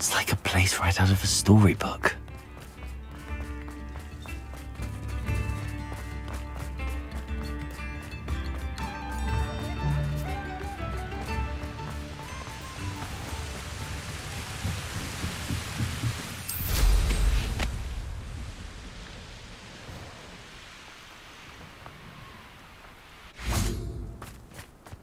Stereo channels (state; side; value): identical; both; correlation 1.00